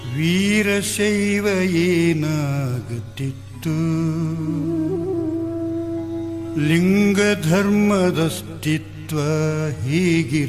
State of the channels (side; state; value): both; identical; correlation 1.00